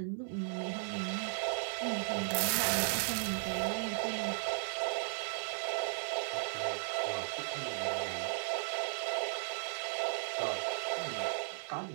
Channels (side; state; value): left; silent; 54 dB below the other